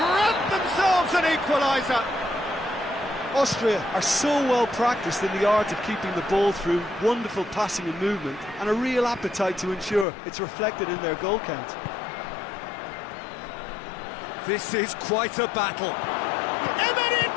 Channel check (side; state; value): right; drops out; at 10.1 s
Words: themselves an equaliser. Austria are so well practiced in the art of keeping the ball through wonderful passing and movement, and a real appetite to ensure it's reflected in their goal count. This is quite a battle.